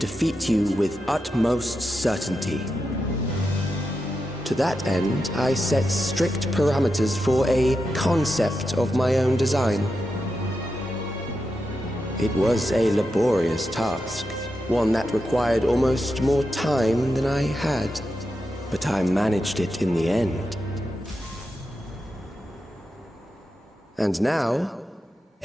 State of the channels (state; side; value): normal; both; correlation 0.88